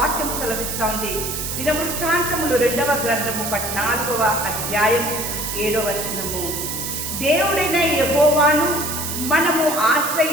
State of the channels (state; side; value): noise; right; hiss, 4 dB below the sound